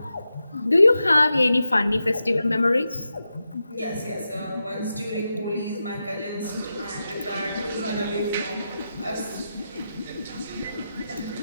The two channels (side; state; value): both; inverted; correlation -0.90